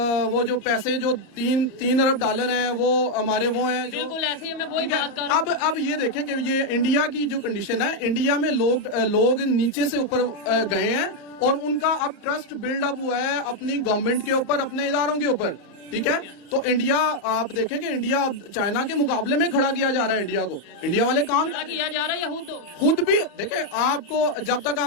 وہ جو پیسے جو $3 ارب ہیں وہ ہمارے وہ ہیں جو بالکل ایسے ہی. میں وہی بات کر رہا ہوں. اب یہ دیکھیں کہ یہ انڈیا کی جو کنڈیشن ہے, انڈیا میں لوگ نیچے سے اوپر گئے ہیں, اور ان کا اب ٹرسٹ بلڈ اپ ہوا ہے اپنی گورنمنٹ کے اوپر, اپنے اداروں کے اوپر. ٹھیک ہے, تو انڈیا آپ دیکھیں کہ انڈیا اب چائنا کے مقابلے میں کھڑا کیا جا رہا ہے. انڈیا کو انڈیا والے کام کیا جا رہا ہے, یا خود بھی دیکھیں, آپ کو جب تک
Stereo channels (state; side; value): late; right; 34 ms